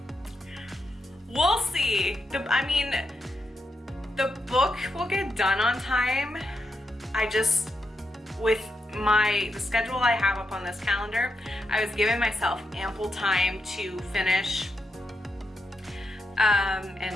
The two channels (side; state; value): both; normal; correlation 0.84